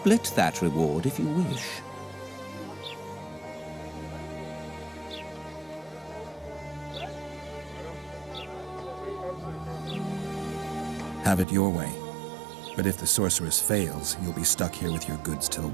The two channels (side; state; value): left; drops out; at 11.5 s